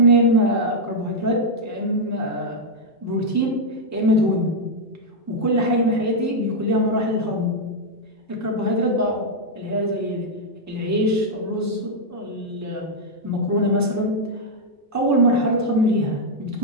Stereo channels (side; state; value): both; normal; correlation -0.03